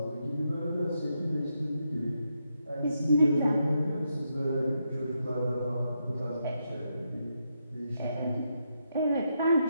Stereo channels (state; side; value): inverted; both; correlation -0.82